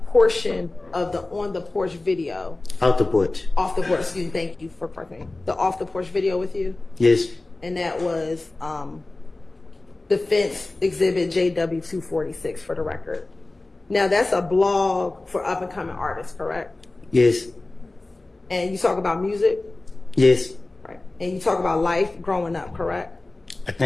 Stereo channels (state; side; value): quieter; right; 3.0 dB